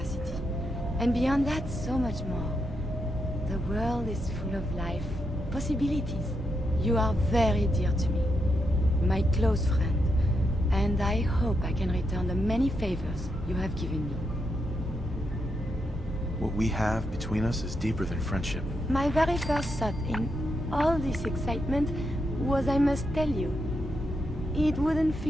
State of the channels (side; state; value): both; normal; correlation 0.83